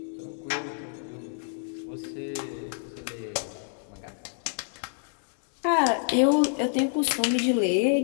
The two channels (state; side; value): silent; right; digital silence